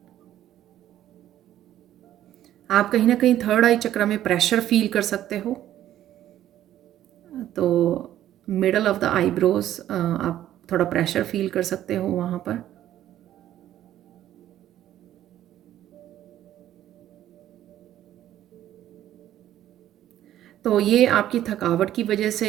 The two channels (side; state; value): left; quieter; 12.4 dB